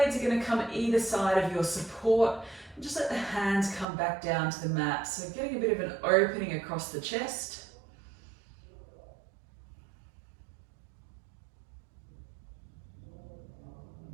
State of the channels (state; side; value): drops out; left; at 3.9 s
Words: are going to come either side of your support. Just let the hands come back down to the mat. So getting a bit of an opening across the chest.